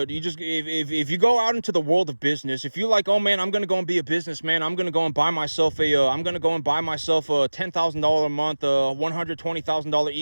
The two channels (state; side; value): inverted; both; correlation -1.00